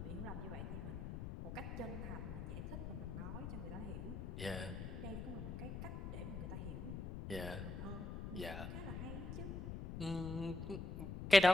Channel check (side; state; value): left; noise; rumble, 6 dB below the sound